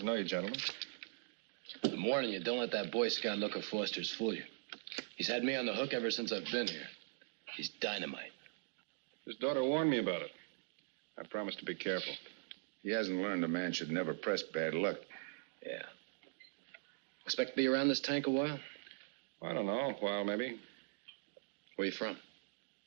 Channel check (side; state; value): left; silent; digital silence